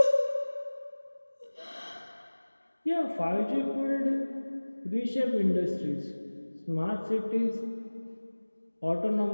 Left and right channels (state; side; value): inverted; both; correlation -1.00